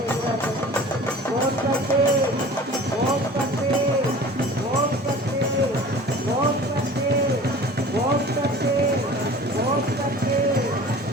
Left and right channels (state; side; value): normal; both; correlation 0.42